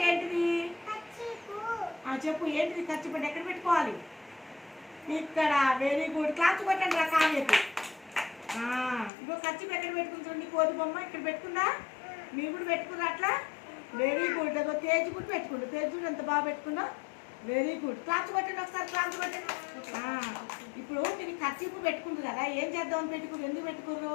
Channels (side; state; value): right; drops out; at 9.1 s